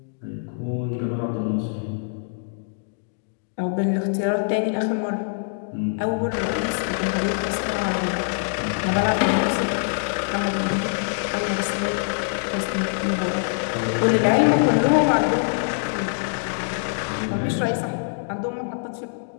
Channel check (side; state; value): right; silent; digital silence